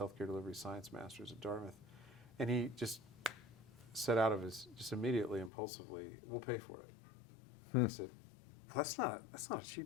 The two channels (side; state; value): right; drops out; at 5.5 s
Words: delivery science master's at Dartmouth, and he just said out of his, just immediately, impulsively, we'll pay for it. I said, well, that's not a